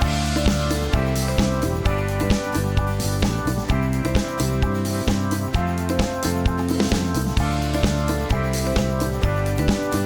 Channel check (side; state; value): both; identical; correlation 1.00